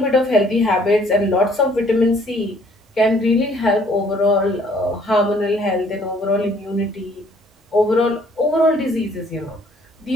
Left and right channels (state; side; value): normal; both; correlation 0.60